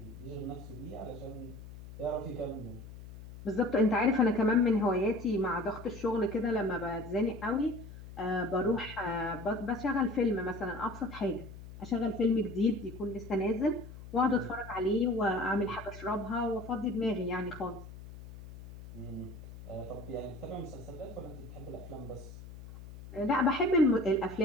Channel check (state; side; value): noise; left; hum, 14 dB below the sound